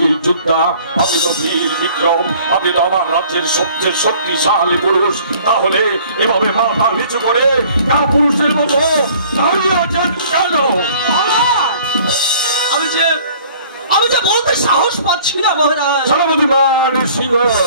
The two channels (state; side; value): inverted; both; correlation -0.53